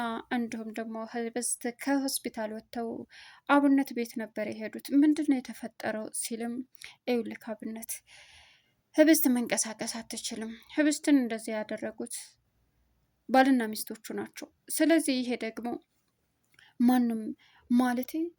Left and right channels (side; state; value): both; identical; correlation 1.00